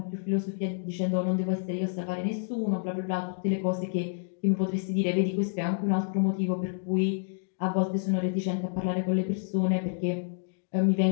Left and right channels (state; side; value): silent; right; digital silence